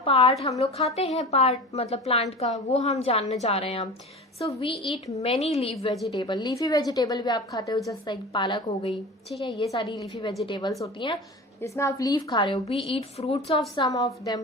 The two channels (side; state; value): both; normal; correlation 0.34